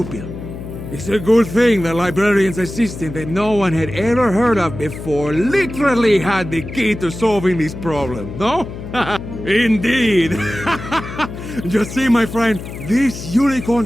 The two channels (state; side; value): noise; left; hum, 10 dB below the sound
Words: It's a good thing the librarian's assistant that no one had ever heard of before literally had the key to solving this problem, no? Indeed. Just see, my friend, this unicorn